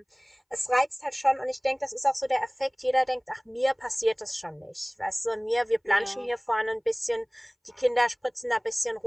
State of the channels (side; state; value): both; identical; correlation 1.00